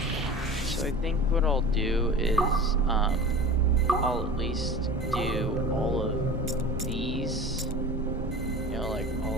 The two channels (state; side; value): normal; both; correlation 0.36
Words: So I think what I'll do is, I'll at least do all of these, you know, like